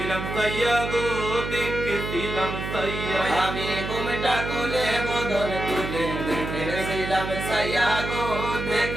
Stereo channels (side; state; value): right; noise; hum, 5 dB below the sound